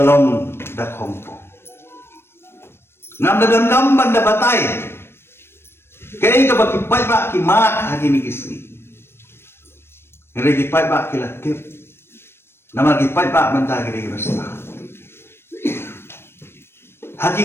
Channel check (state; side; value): late; right; 0.12 ms